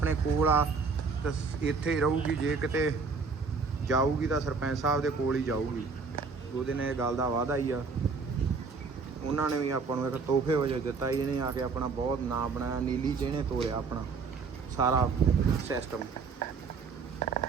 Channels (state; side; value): quieter; left; 4.8 dB